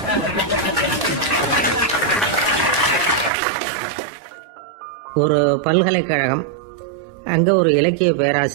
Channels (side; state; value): left; drops out; at 3.3 s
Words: ஒரு பல்கலைக்கழகம், அங்கே ஒரு இலக்கிய